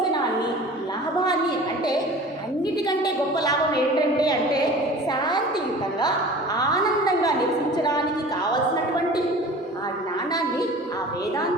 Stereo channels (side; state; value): both; normal; correlation 0.41